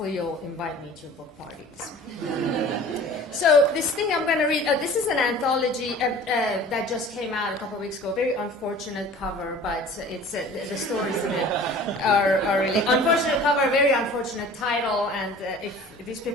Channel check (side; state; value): both; normal; correlation 0.44